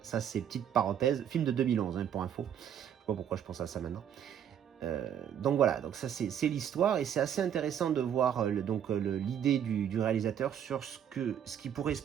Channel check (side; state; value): left; quieter; 9.2 dB